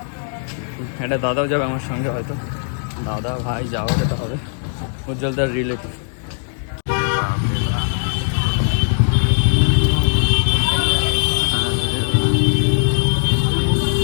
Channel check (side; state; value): right; silent; digital silence